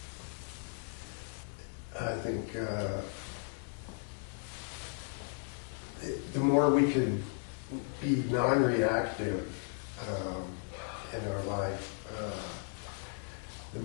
I think the more we can be non-reactive in our life, the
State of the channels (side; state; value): right; silent; 54 dB below the other